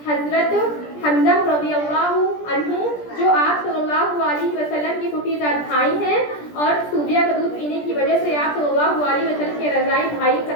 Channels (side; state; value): right; late; 17 ms